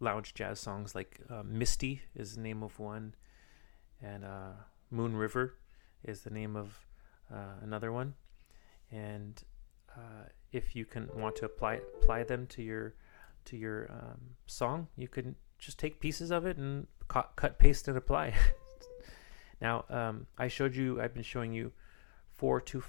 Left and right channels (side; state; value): right; silent; digital silence